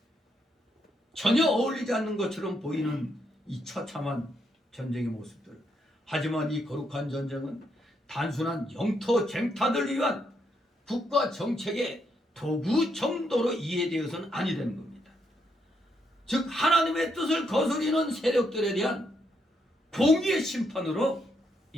전혀 어울리지 않는 것처럼 보이는 이 처참한 전쟁의 모습들. 하지만 이 거룩한 전쟁은 단순한 영토 쟁탈을 위한 국가 정책의 도구 정도로 이해되어서는 아니 되는 겁니다. 즉 하나님의 뜻을 거스리는 세력들에 대한 공의의 심판으로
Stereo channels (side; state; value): both; normal; correlation 0.77